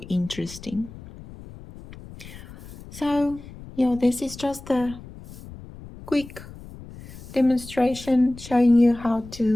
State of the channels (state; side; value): noise; left; rumble, 16 dB below the sound